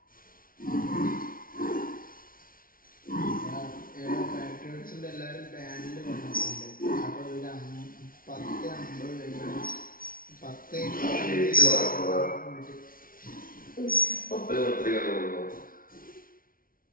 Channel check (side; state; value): right; late; 0.42 ms